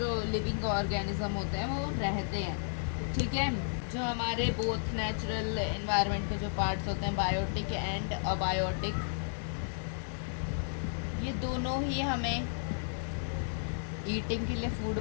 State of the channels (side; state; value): right; silent; 56 dB below the other